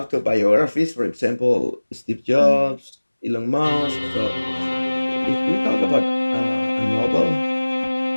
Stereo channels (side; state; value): both; inverted; correlation -1.00